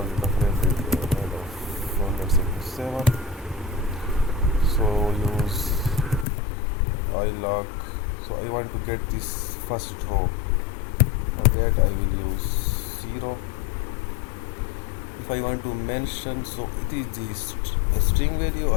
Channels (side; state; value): right; drops out; at 6.2 s